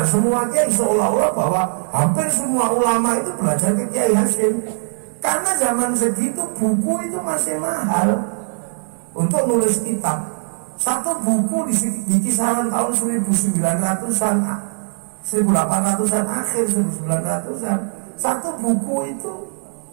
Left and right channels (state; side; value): silent; left; 59 dB below the other